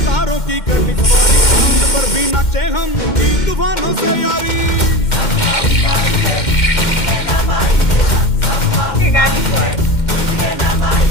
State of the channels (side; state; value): right; late; 2.1 ms